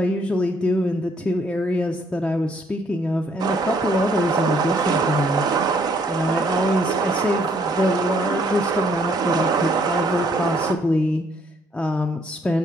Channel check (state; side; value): normal; both; correlation 0.67